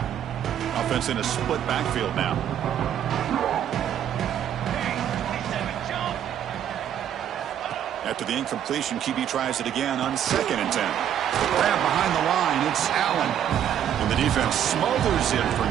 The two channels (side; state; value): left; quieter; 9.9 dB